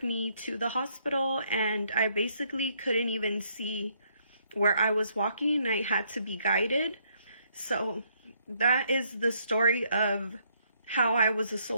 me to the hospital, and I basically couldn't even see where I was walking. I had to be guided. So that is the story of how I was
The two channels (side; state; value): both; inverted; correlation -0.71